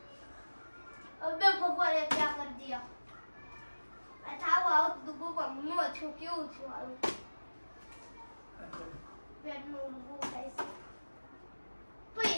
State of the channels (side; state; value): both; inverted; correlation -1.00